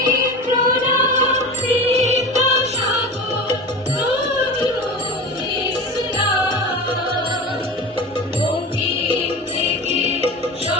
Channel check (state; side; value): normal; both; correlation 0.30